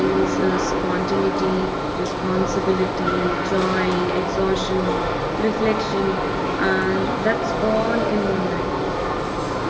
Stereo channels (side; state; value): both; identical; correlation 1.00